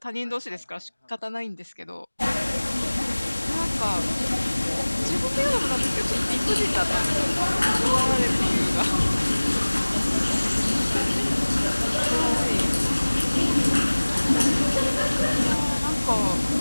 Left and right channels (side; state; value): both; inverted; correlation -1.00